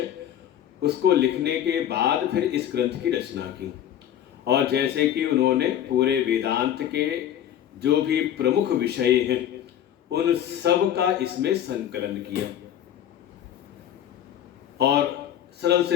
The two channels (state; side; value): quieter; right; 10.7 dB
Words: उसको लिखने के बाद फिर इस ग्रंथ की रचना की। और जैसे कि उन्होंने पूरे वेदांत के जो भी प्रमुख विषय हैं उन सब का इसमें संकलन किया और सरल